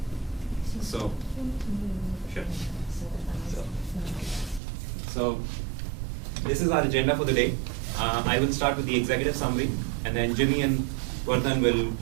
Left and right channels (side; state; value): left; drops out; at 4.6 s